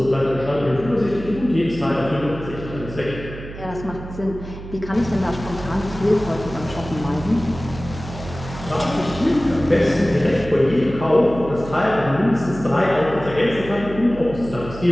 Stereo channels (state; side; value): noise; right; hum, 12 dB below the sound